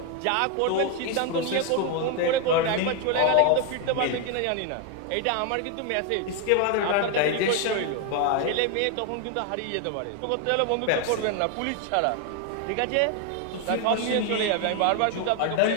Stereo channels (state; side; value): different; both; correlation 0.01